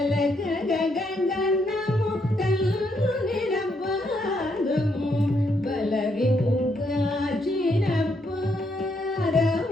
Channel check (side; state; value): both; normal; correlation 0.75